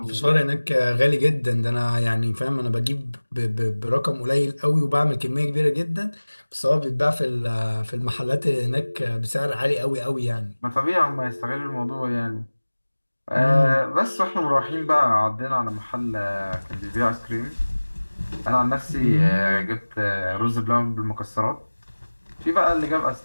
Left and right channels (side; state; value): both; inverted; correlation -1.00